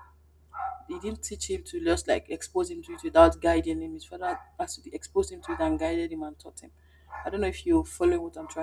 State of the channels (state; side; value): identical; both; correlation 1.00